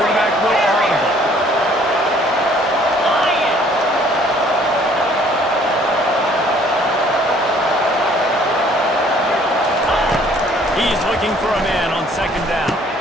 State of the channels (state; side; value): normal; both; correlation 0.59